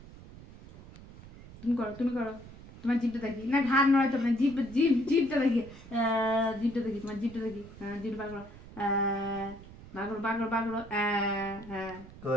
তুমি করো তোমার জিভটা দেখি, না ঘাড় নড়াইতে হবে না, জিভটা দেখি তোমার জিভটা দেখি, জিভ বার করো বাগড়ো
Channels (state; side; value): noise; right; rumble, 17 dB below the sound